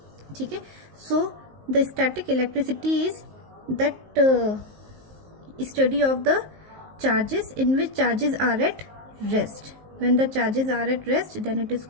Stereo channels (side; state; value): left; late; 19 ms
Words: ठीक है. So the static electricity is that study of the charges in which charges are at rest. When the charges are at rest, then it is